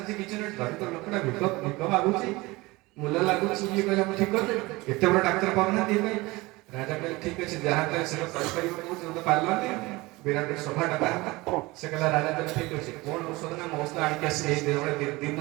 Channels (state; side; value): quieter; left; 22.0 dB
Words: କିଛି ନୁହେଁ ଦରିଦ୍ର ଲୋକଟା ଭିକ ମାଗୁଛି ମୂଲ୍ୟ ଲାଗୁଛି ଇଏ କହିଲା ମୁଁ ଠିକ କରିଦେବି ଏତେ ବଡ ଡାକ୍ତର ପାଉନାହାନ୍ତି ଇଏ ପାଇଁ ରାଜା କହିଲେ ଠିକ ଅଛି ଯାହା କହିଲେ ସେଟା କରିପାରିବ କହୁଛି ତ ପାରିଲନି ବିରାଟ ସଭାଟା ବାହାରିଲା ସେ କହିଲା ରାଜା କହିଲେ ଠିକ ଅଛି କଣ ଔଷଧ ନା ମୋ ଔଷଧ ଆଣିକି ଆସିଲେ ଏଇ ଦିନ ଦିନ